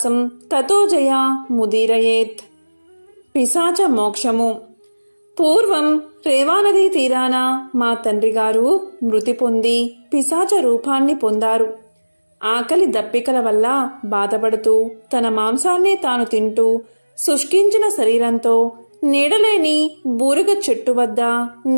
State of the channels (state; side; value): inverted; both; correlation -1.00